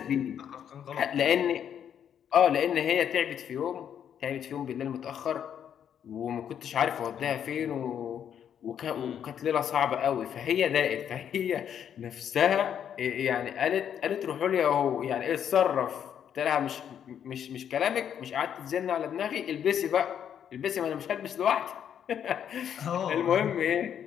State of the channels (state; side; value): quieter; right; 8.9 dB